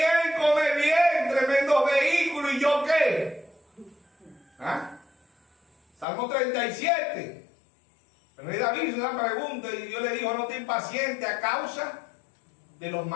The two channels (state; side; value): drops out; right; at 6.1 s